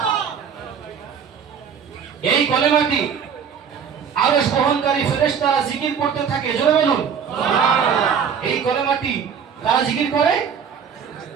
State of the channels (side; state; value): left; quieter; 7.2 dB